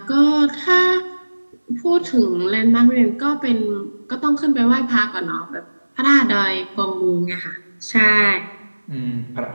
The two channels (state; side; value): inverted; both; correlation -1.00